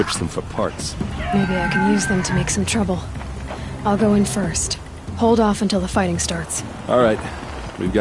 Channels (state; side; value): identical; both; correlation 1.00